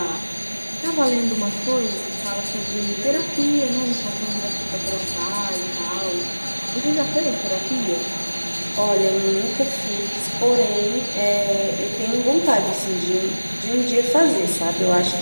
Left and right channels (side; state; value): both; inverted; correlation -1.00